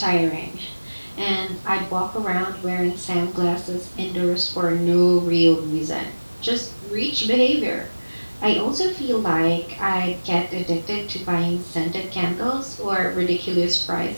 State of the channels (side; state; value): both; inverted; correlation -1.00